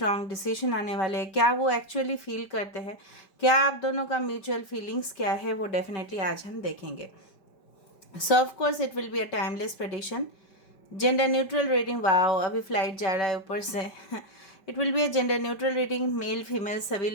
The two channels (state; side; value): late; right; 5.1 ms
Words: डिसीजन आने वाले हैं, क्या वो एक्चुअली फील करते हैं, क्या आप दोनों का म्यूचुअल फीलिंग्स क्या है, वो डेफिनेटली आज हम देखेंगे। सो of course it will be a timeless prediction. Gender neutral reading, wow अभी फ्लाइट जा रहा है ऊपर से। It will be a gender neutral reading, male female सभी